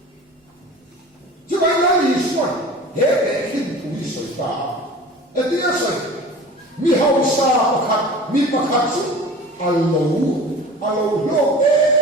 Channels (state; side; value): normal; both; correlation 0.39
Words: chứ bây giờ lý xuân hệ hệ kinh tùy sợi ta ở đây sợi mi hậu sa pakat mi pakat su alo lo mà